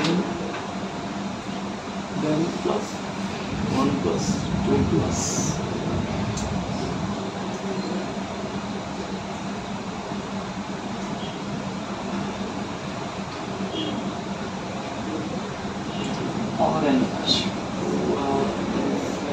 then plus 1 plus 2 plus orange,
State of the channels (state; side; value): identical; both; correlation 1.00